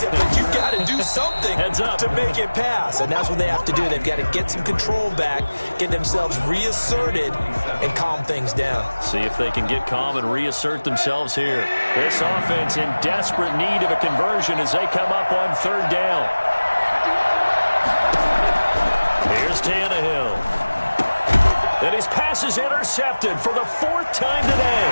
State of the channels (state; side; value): inverted; both; correlation -1.00